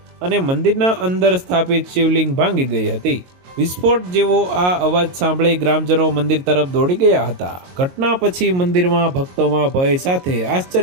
અને મંદિરના અંદર સ્થાપિત શિવલિંગ ભાંગી ગઈ હતી। વિસ્ફોટ જેવો આ અવાજ સાંભળી ગ્રામજનો મંદિર તરફ દોડી ગયા હતા। ઘટના પછી મંદિરમાં ભક્તોમાં ભય સાથે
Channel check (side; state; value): left; late; 22 ms